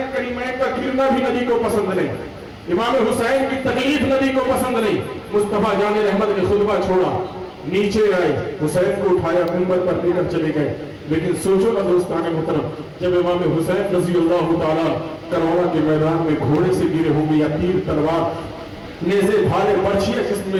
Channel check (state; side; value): identical; both; correlation 1.00